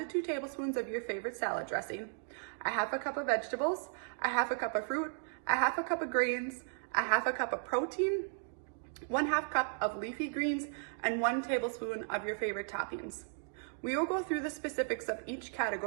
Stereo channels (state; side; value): silent; left; digital silence